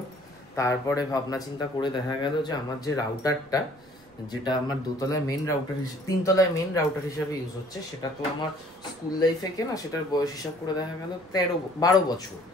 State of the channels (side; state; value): right; noise; rumble, 29 dB below the sound